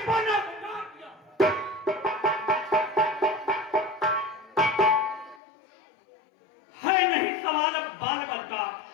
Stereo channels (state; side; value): drops out; right; at 5.4 s